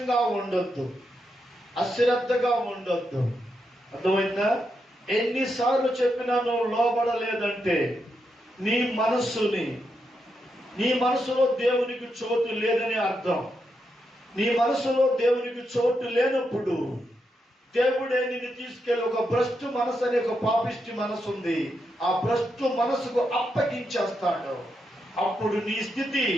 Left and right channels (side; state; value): both; normal; correlation 0.83